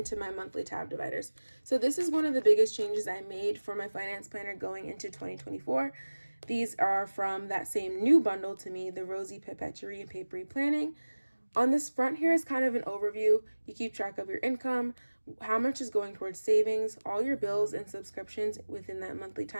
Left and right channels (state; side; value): inverted; both; correlation -1.00